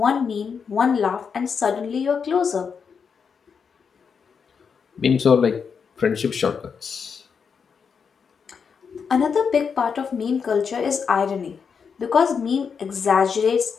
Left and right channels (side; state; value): right; quieter; 6.2 dB